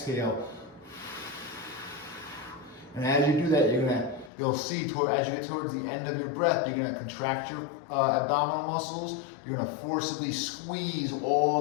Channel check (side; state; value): right; drops out; at 4.3 s